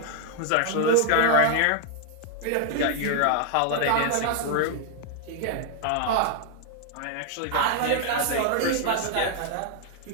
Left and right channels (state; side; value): different; both; correlation 0.00